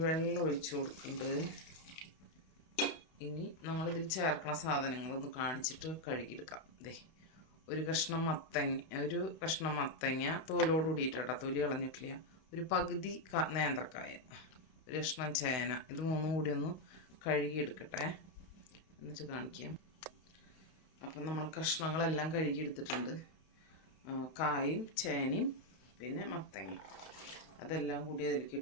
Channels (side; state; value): right; late; 32 ms